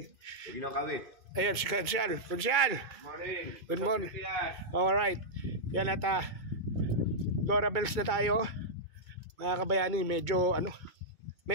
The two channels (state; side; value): late; left; 2.2 ms